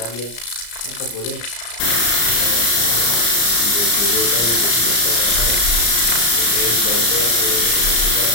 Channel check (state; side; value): late; right; 34 ms